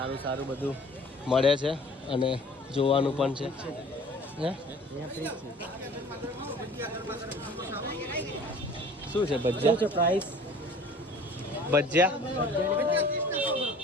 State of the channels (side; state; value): both; normal; correlation 0.48